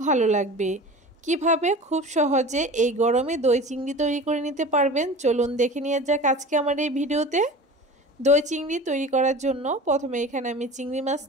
ভালো লাগবে। কিভাবে খুব সহজে এই গরমে দই চিংড়ি তৈরি করে নিতে পারবেন চলুন দেখে নিয়ে যাক আজকে আমার এই ভিডিওতে। দই চিংড়ি তৈরি করার জন্য প্রথমে এখানে আমি চিংড়ি মাছ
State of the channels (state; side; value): normal; both; correlation 0.37